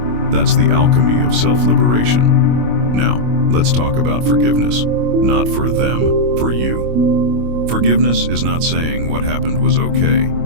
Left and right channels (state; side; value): late; left; 25 ms